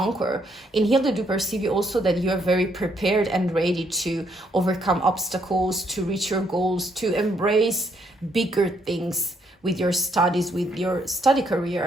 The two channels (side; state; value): both; normal; correlation 0.72